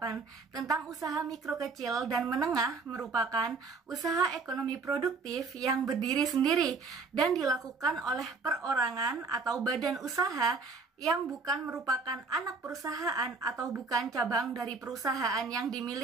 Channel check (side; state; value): left; quieter; 4.3 dB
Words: tentang usaha mikro, kecil, dan menengah merupakan usaha ekonomi produktif yang berdiri sendiri dan dilakukan oleh perorangan atau badan usaha yang bukan merupakan anak perusahaan atau bukan cabang dari perusahaan yang